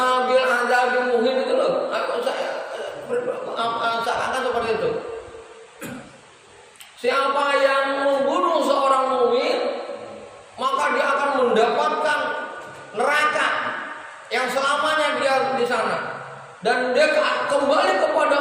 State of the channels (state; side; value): identical; both; correlation 1.00